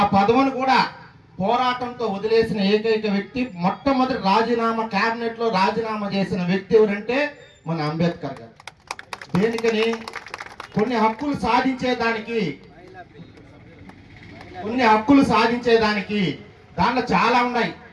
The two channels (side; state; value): both; identical; correlation 1.00